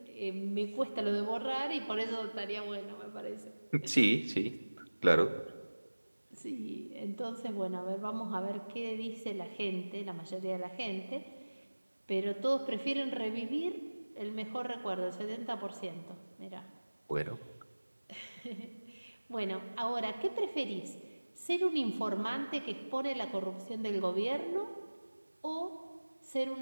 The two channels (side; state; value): both; inverted; correlation -1.00